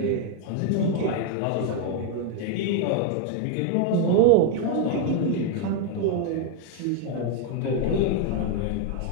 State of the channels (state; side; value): different; both; correlation 0.01